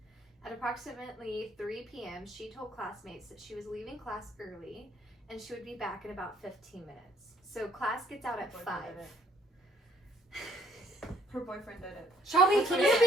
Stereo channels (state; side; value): normal; both; correlation 0.64